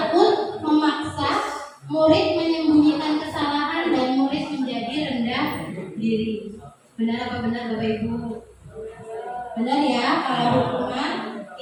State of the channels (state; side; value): identical; both; correlation 1.00